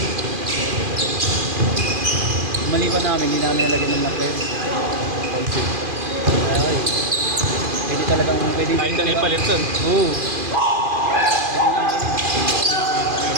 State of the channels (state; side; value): late; left; 2.4 ms